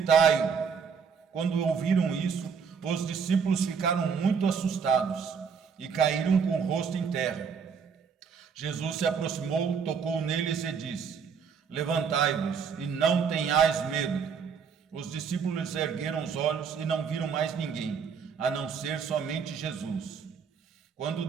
Quando ouviram isso, os discípulos ficaram muito assustados e caíram com o rosto em terra. Jesus se aproximou, tocou neles e disse: Levantai-vos e não tenhais medo. Os discípulos ergueram os olhos e não viram mais ninguém, a não ser somente Jesus. Quando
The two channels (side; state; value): left; quieter; 6.3 dB